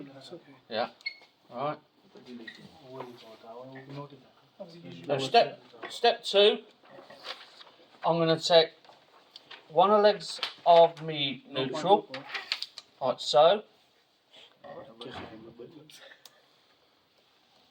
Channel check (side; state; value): both; identical; correlation 1.00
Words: that's okay. Yeah. Alright. Now, Now step 2, I'm going to take one of the legs of me neutral, like so.